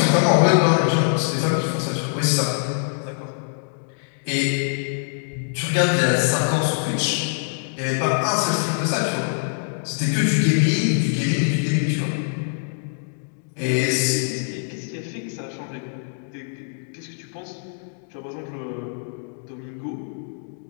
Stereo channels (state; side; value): silent; right; digital silence